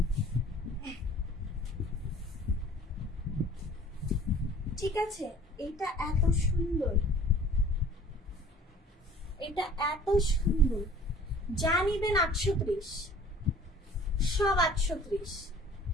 ঠিক আছে? এটা এত সুন্দর, এটা এত সুন্দর, যা নিবেন 830, সব 830।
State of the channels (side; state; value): both; normal; correlation 0.49